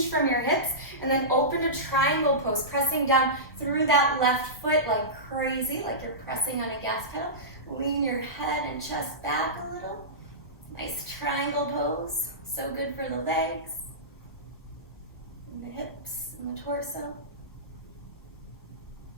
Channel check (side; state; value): both; normal; correlation -0.17